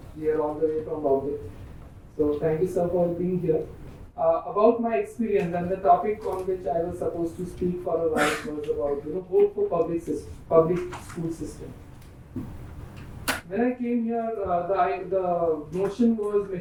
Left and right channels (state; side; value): identical; both; correlation 1.00